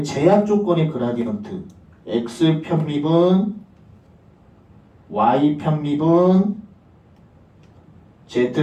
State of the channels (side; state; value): both; identical; correlation 1.00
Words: 제약 조건의 그라디언트, x 편미분, y 편미분,